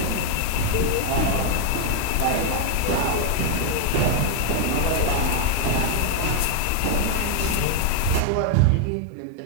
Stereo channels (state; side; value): different; both; correlation 0.00